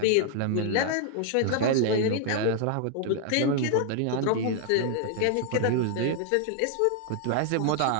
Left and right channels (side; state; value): both; different; correlation 0.00